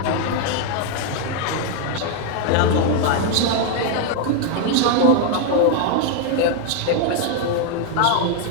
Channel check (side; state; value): both; different; correlation 0.01